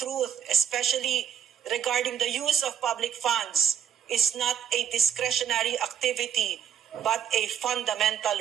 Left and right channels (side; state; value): left; quieter; 9.2 dB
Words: especially regarding the use of public funds, is not a discretionary activity but a fundamental